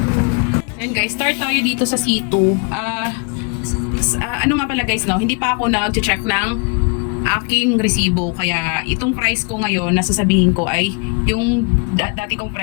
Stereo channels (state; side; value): quieter; right; 34.7 dB